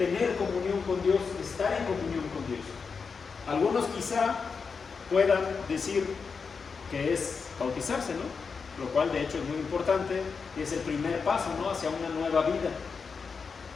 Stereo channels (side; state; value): right; quieter; 5.3 dB